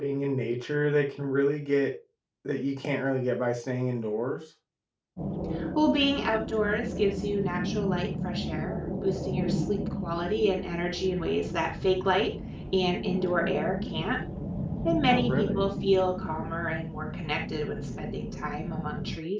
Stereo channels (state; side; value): identical; both; correlation 1.00